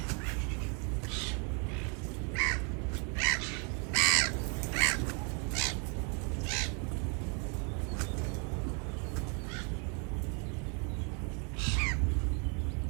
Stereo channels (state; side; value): quieter; left; 36.5 dB